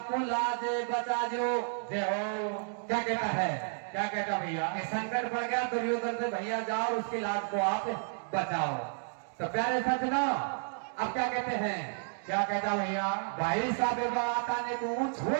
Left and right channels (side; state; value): left; silent; digital silence